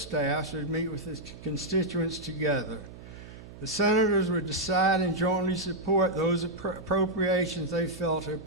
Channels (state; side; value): noise; right; hum, 16 dB below the sound